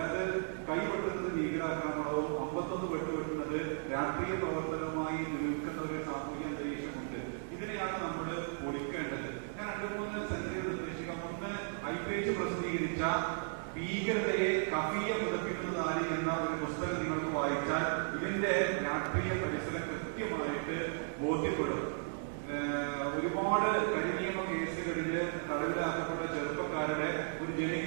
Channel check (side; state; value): left; silent; digital silence